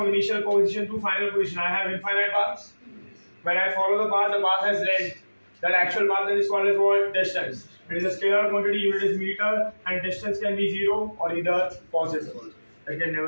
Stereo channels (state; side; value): inverted; both; correlation -1.00